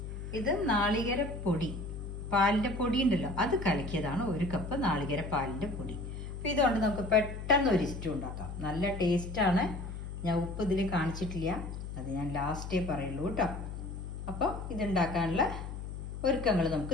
ഇത് നാളികേര പൊടി, പാലിൻ്റെ പൊടി ഉണ്ടല്ലോ അത് കലക്കിയതാണ്, 1 കപ്പ് നാളികേര പാലിൻ്റെ പൊടി. അപ്പോൾ ഇതുകൊണ്ട് നമുക്ക് പെട്ടെന്ന് ഒരു ഇസ്റ്റു ഉണ്ടാക്കാം. നല്ല ടേസ്റ്റാണ്. ഞാൻ ഉപ്പ് ഇതിൽ കാണിച്ചിട്ടില്ല, അത് ഞാൻ ലാസ്റ്റേ പറയുള്ളൂ കേട്ടോ. അപ്പോൾ ഇതുണ്ടാക്കാനുള്ള ഒരുക്കങ്ങൾ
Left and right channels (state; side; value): noise; left; hum, 8 dB below the sound